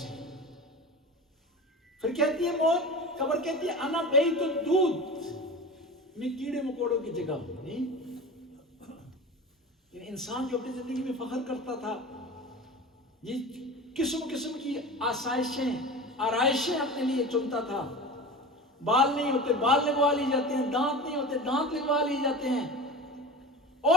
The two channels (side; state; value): both; normal; correlation 0.33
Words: پھر کہتی ہے موت، قبر کہتی ہے انا بیت الدود، میں کیڑے مکوڑوں کی جگہ ہوں۔ انسان جو اپنی زندگی میں فخر کرتا تھا، یہ قسم قسم کی آسائشیں، آرائشیں اپنے لیے چنتا تھا، بال نہیں ہوتے بال لگوا لی جاتے ہیں، دانت نہیں ہوتے دانت لگوا لی جاتے ہیں،